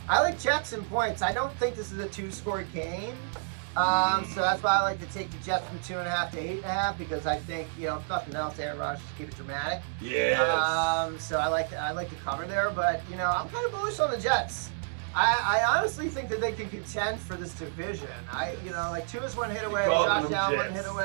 I like Jets and points. I don't think this is a 2-score game. So that's why I like to take the Jets from 2.5 to 8.5, because I think, if nothing else, Aaron Rodgers just keep it dramatic. Yes. So I like to cover there, but I'm kind of bullish on the Jets. I honestly think that they can contend for this division. Tua's one hit away, Josh Allen one hit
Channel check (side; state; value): left; silent; 58 dB below the other